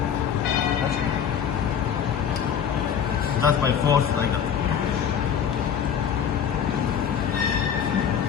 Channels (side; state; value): right; quieter; 8.2 dB